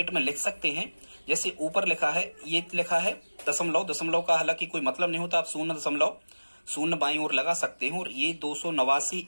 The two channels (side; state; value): both; inverted; correlation -1.00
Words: में लिख सकते हैं, जैसे ऊपर लिखा है, ये लिखा है दशमलव, दशमलव का हालांकि कोई मतलब नहीं होता, आप 0.0 बाईं ओर लगा सकते हैं, और ये 289